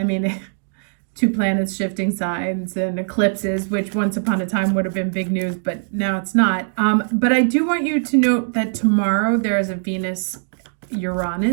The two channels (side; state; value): left; silent; 65 dB below the other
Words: mean, two planets shifting signs and eclipses, which once upon a time would have been big news, but now it's not. But I do want you to note that tomorrow there is a